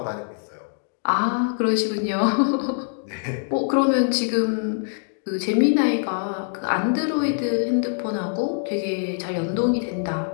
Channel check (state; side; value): silent; right; digital silence